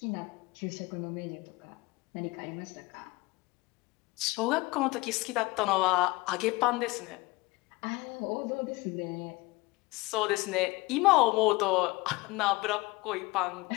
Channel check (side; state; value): right; quieter; 22.6 dB